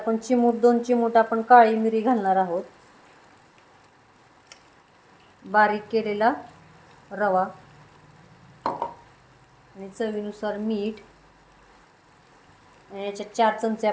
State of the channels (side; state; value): both; identical; correlation 1.00